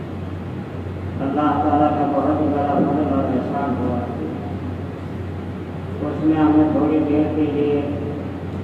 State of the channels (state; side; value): identical; both; correlation 1.00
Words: تعالیٰ کا بہت ہی بڑا فضل اور احسان ہوا، اس نے ہمیں تھوڑی دیر کے لیے